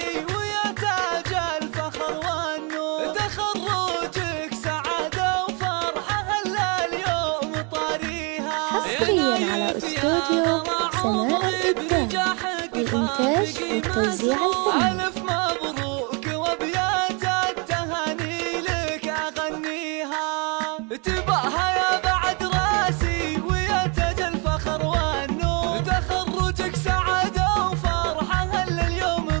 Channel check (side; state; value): left; quieter; 32.9 dB